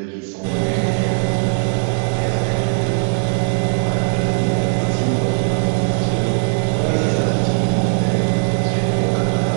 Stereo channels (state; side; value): silent; left; digital silence